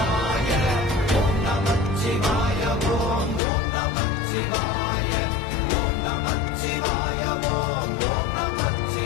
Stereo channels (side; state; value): right; drops out; at 3.4 s